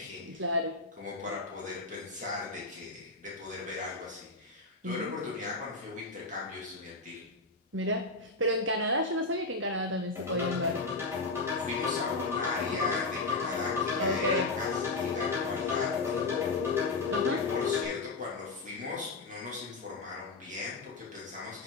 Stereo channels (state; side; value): quieter; right; 3.4 dB